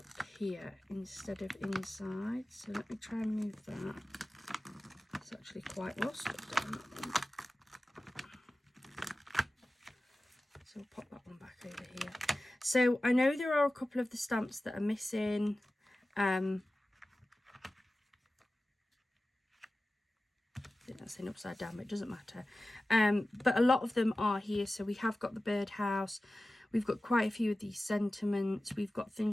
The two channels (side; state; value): both; normal; correlation 0.95